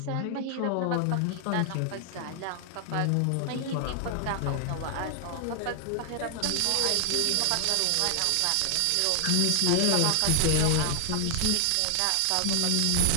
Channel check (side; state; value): both; different; correlation 0.00